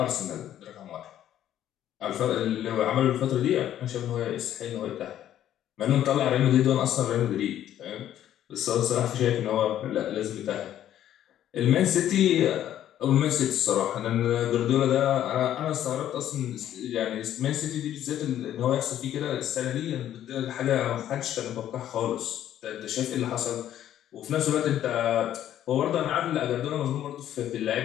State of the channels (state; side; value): quieter; right; 11.5 dB